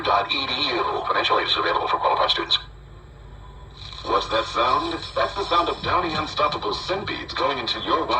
Financial aid is available for qualified students. What's that sound? That's the sound of Downy Unstoppable scent beads going into your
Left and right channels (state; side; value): identical; both; correlation 1.00